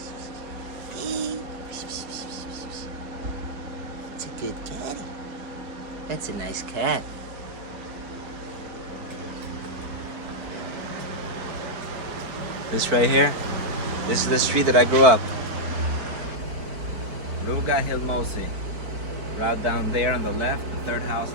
Hey. It's a good caddy. That's a nice cat. This right here, this is the street that I grew up. Ruga Hilmosi. Right down there on the left, the third house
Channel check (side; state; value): left; late; 4.5 ms